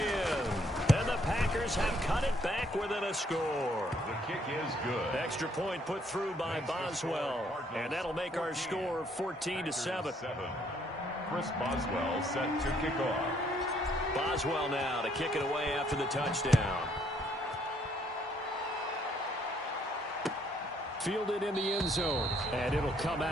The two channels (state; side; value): normal; both; correlation 0.67